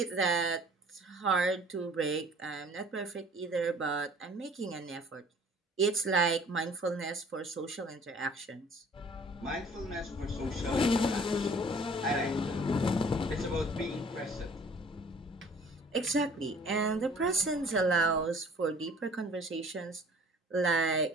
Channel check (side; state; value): both; normal; correlation 0.52